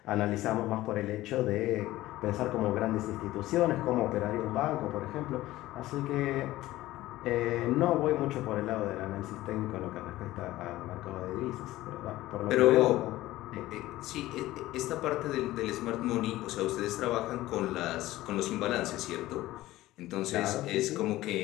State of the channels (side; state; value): right; quieter; 16.4 dB